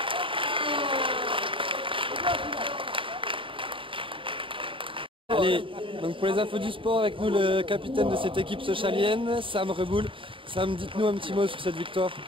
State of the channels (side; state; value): left; late; 0.25 ms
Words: Allez, donc pour les infos du sport, avec nous le capitaine de cette équipe sochalienne, Sam Reboul. Sam, dites-nous un petit mot sur cette victoire.